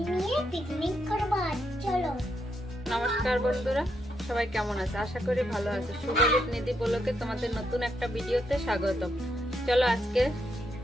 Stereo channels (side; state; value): both; normal; correlation 0.79